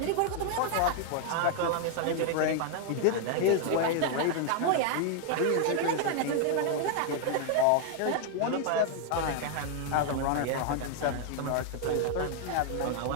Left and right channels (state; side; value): different; both; correlation 0.00